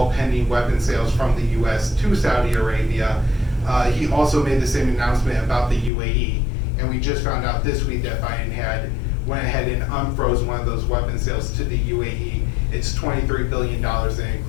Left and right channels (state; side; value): drops out; right; at 5.9 s